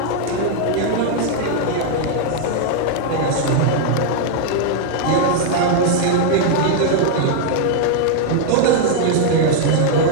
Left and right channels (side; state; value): both; different; correlation 0.00